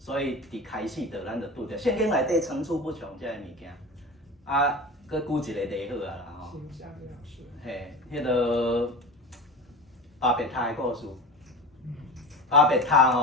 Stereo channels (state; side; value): normal; both; correlation 0.30